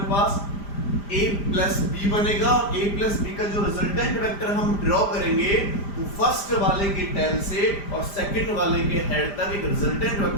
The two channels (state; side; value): late; right; 5.0 ms